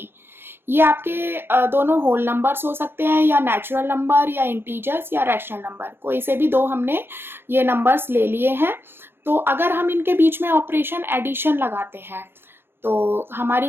ये आपके दोनों होल नंबर्स हो सकते हैं या नेचुरल नंबर या इंटीजर्स या रैशनल नंबर, कोई से भी 2 हमने ये नंबर्स ले लिए हैं। तो अगर हम इनके बीच में ऑपरेशन एडिशन लगाते हैं तो हमारी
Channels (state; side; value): late; left; 0.11 ms